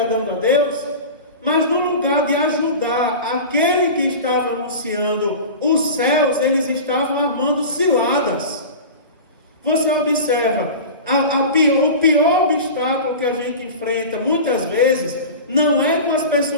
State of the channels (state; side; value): inverted; both; correlation -0.32